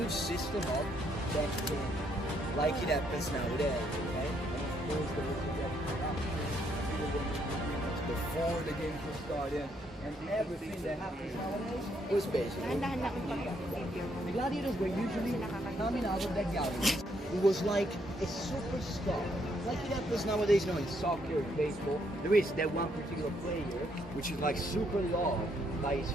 system of betting, like it happens nowadays, okay? And of course there was a corruption before the game was started, and everything that happens nowadays was basically the gladiators were usually coming out of that gallery. It was like a superstar, like it happens nowadays, in soccer, in baseball. There is that one particular player which is like super loved by his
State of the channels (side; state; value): both; normal; correlation 0.73